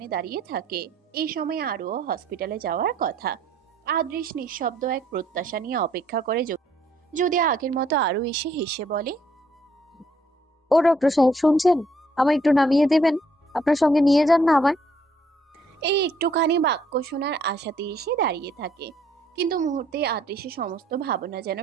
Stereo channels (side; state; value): both; normal; correlation 0.66